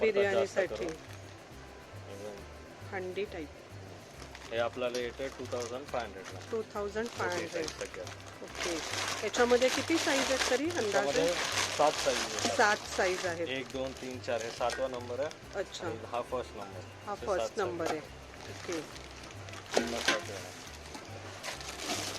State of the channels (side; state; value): both; identical; correlation 1.00